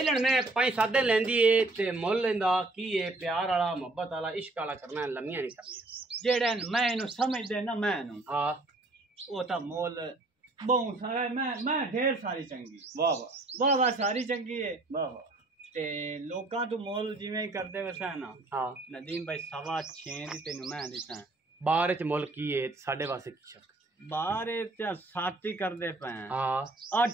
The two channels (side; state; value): left; quieter; 3.0 dB